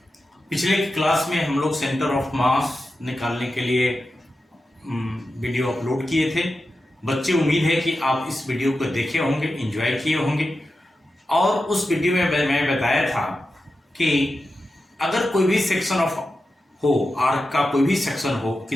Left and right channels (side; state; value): both; normal; correlation 0.91